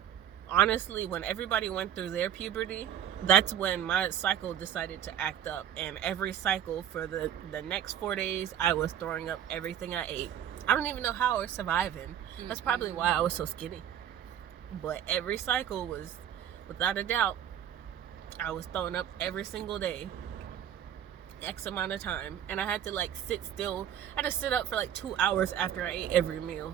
honestly when everybody went through their puberty, that's when my cycle decided to act up, and every cycle for the next 4 days I was throwing up everything I ate. I don't even know how I was surviving. That's probably why I was so skinny. But every cycle was, without a doubt, I was throwing up every single day, X amount of time, and I had to like sit still. I had to sit up for like 2 hours after I ate every meal.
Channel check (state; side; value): quieter; left; 10.2 dB